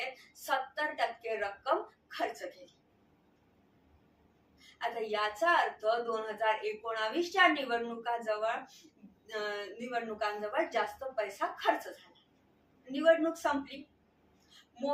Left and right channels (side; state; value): both; identical; correlation 1.00